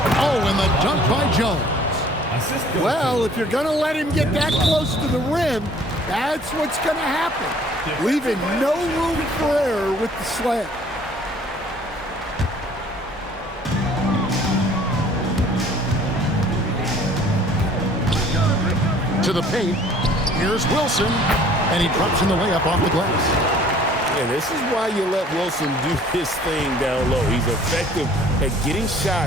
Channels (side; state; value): both; normal; correlation 0.54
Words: Oh, and the dunk by Jones. Well, if you're going to let him get that close to the rim, that's what's going to happen. Leaving no room for error with the slam. into the paint. Here's Wilson, and he drops in the layup off the glass. And this is why you let Wilson do his thing down low. He's effective at getting